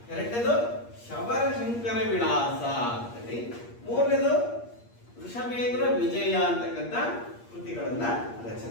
ಎರಡನೇದು ಶಬರಶಂಕರ ವಿಳಾಸ ಅಂತೇಳಿ ಮೂರನೇದು ವೃಷಭೇಂದ್ರ ವಿಜಯ ಅಂತಕ್ಕಂಥ ಕೃತಿಗಳನ್ನ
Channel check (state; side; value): late; right; 8.5 ms